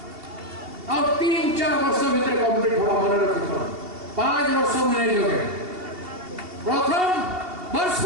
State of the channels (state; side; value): late; left; 2.7 ms